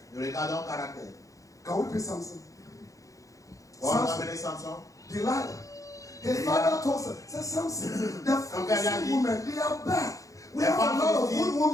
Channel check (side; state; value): right; late; 0.16 ms